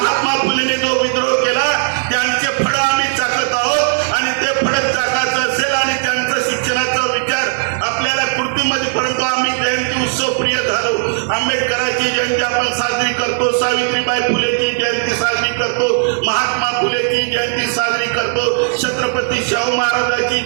फुलेने जो विद्रोह केला त्यांचे फळ आम्ही चाकत आहोत आणि ते फळ चाकायचं असेल आणि त्यांचं शिक्षणाचा विचार आपल्याला कृतीमध्ये, परंतु आम्ही जयंती उत्सव प्रिय झालो. आंबेडकरांची जयंती आपण साजरी करतो, सावित्रीबाई फुलेची जयंती साजरी करतो, महात्मा फुलेची जयंती साजरी करतो, छत्रपती शाहू महाराजांची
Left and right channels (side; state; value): left; silent; digital silence